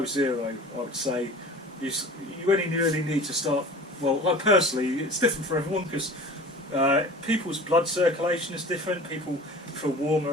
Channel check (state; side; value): normal; both; correlation 0.40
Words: zero, I would say. You only really need to start. Well, I personally, it's different for everyone because people's blood circulation is different. People feel warmer